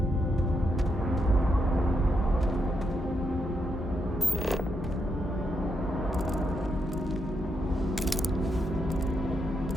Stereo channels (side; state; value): both; normal; correlation 0.81